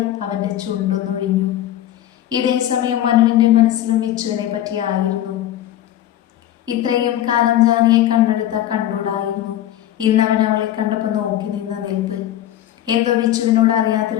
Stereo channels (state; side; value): quieter; right; 12.5 dB